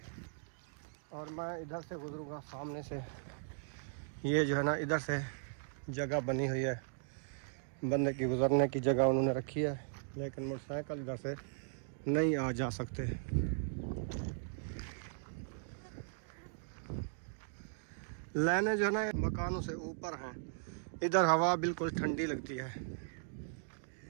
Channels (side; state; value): left; silent; digital silence